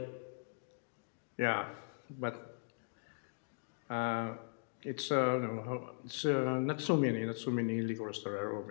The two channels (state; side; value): silent; right; digital silence